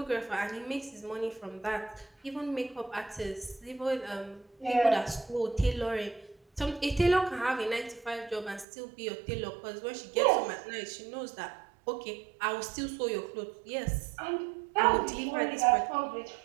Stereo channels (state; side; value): drops out; left; at 8.7 s